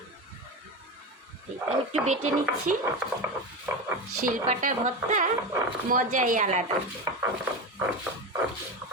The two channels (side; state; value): both; normal; correlation 0.21